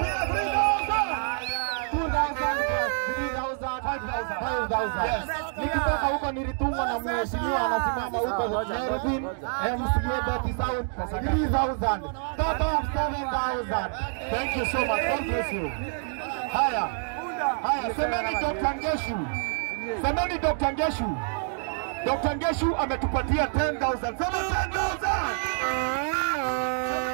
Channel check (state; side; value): silent; left; 60 dB below the other